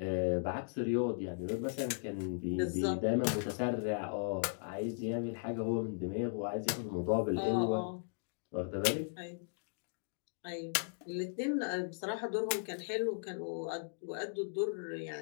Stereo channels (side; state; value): right; silent; digital silence